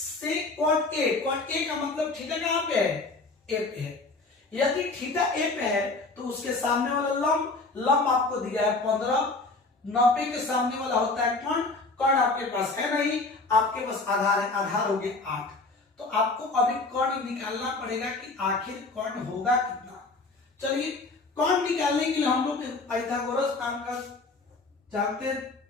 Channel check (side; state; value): right; quieter; 3.5 dB